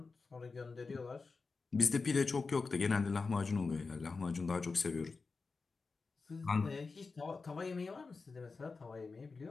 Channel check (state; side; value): quieter; right; 4.3 dB